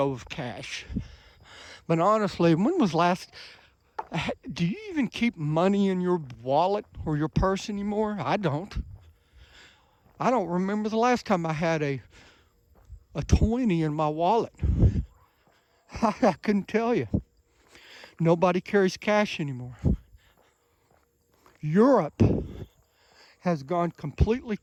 of cash. But honestly, when was do you even keep money in your wallet or your purse anymore? I don't. I don't remember the last time I had a 20 in my wallet. I couldn't tell you. Nobody carries cash anymore. Europe has gone completely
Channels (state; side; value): identical; both; correlation 1.00